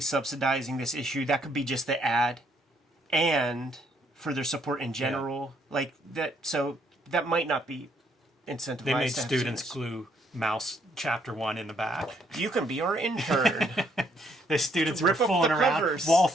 subsidizing this issue. That could be just the ad, and for their support in general. Yeah. Like that. So that might not be incentivized. They made students glue Mouse chapter 1 in the back. You can be our intern. The students were Rip up fooling the around. covers. Wall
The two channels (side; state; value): both; normal; correlation 0.70